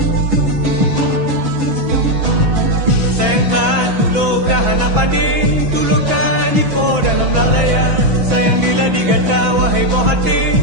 Sayang tak tulo kahana padi tulo kaji po dalam lalaya. Sayang bila digata wahai boh hati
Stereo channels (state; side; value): late; left; 6.1 ms